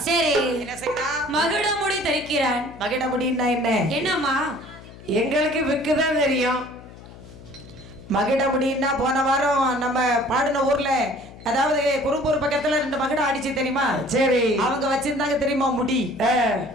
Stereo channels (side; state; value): left; noise; hum, 18 dB below the sound